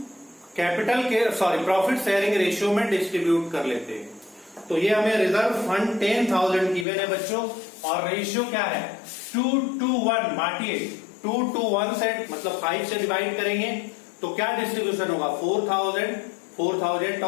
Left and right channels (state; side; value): drops out; right; at 6.9 s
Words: कैपिटल के प्रॉफिट शेयरिंग रेशियो में डिस्ट्रीब्यूट कर लेते हैं। तो ये हमें रिजर्व फंड 10,000 गिवन है बच्चों, और रेशियो क्या है 2:1, बांटिए 2:1 से, मतलब 5 से डिवाइड करेंगे तो क्या डिस्ट्रीब्यूशन होगा 4,000, 4,000